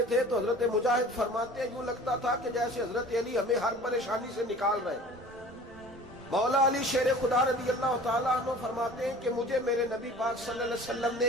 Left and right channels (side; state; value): right; noise; rumble, 23 dB below the sound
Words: تھے تو حضرت مجاہد فرماتے ہیں یوں لگتا تھا کہ جیسے حضرت علی ہمیں ہر پریشانی سے نکال رہے ہیں۔ مولا علی شیر خدا رضی اللہ تعالیٰ عنہ فرماتے ہیں کہ مجھے میرے نبی پاک صلی اللہ علیہ وسلم